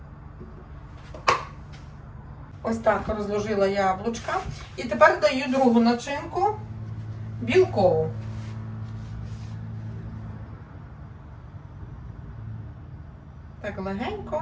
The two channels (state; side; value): identical; both; correlation 1.00